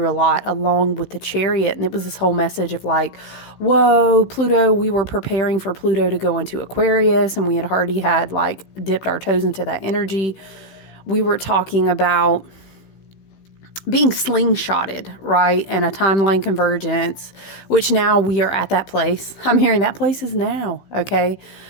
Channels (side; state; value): right; late; 16 ms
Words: a lot along with the chariot. And it was this whole message of like, whoa, Pluto, we were preparing for Pluto to go into Aquarius, and we had already had like dipped our toes into that energy. We were talking about being slingshotted, right? And a timeline convergence, which now we are at that place. I'm hearing that place is now, okay?